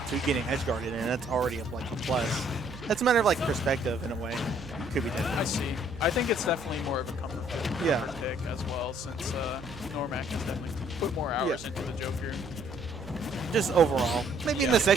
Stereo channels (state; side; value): noise; right; hum, 16 dB below the sound